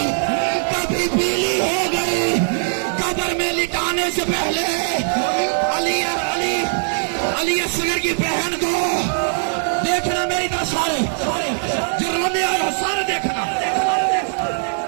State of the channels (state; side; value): silent; left; 66 dB below the other